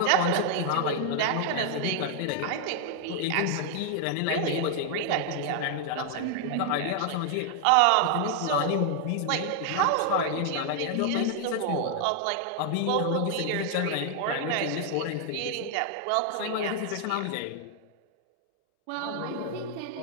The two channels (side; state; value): both; different; correlation 0.00